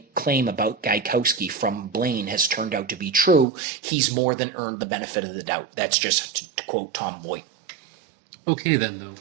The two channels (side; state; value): left; drops out; at 3.5 s